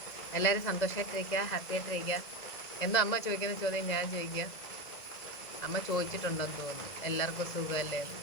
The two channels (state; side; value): late; right; 2.0 ms